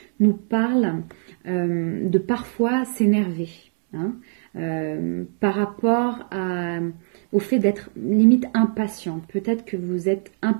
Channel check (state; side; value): silent; left; digital silence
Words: nous parle de parfois s'énerver. Hein, par rapport au fait d'être limite impatient. Peut-être que vous êtes